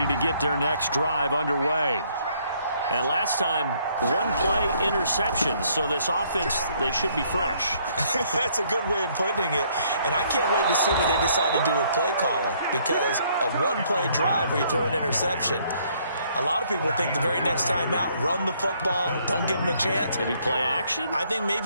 to get their next drive underway. And last time, 1-play interception. So this offense, they should be fresh. That's a good way of putting it. And I can't wait to see what they decide to do with play calling. Because a 1-play drive where you throw an interception, a lot of people think the very next time out, run the football, don't give them a chance. Maybe play action? I think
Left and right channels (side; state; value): both; inverted; correlation -0.66